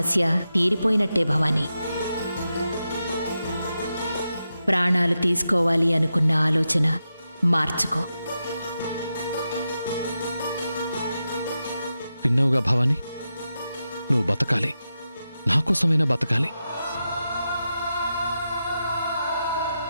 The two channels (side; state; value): both; inverted; correlation -0.89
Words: తీరిపోయినట్టే భవానీ. ప్రాణాలు తీసుకోవాలి అనుకున్న ఆలోచన మార్చుకో. విన్నావుగా భవాని, నువ్వు బతకాలి, నా కోసమైనా బతకాలి.